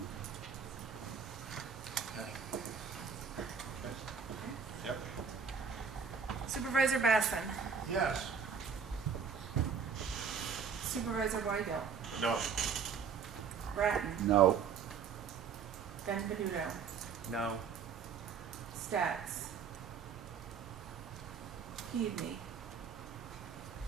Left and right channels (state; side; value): quieter; left; 6.5 dB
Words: Okay. Yep. Supervisor Basson. Yes. Supervisor Weigel. No. Grattan. No. Benvenuto. No. Stats. Keaveney.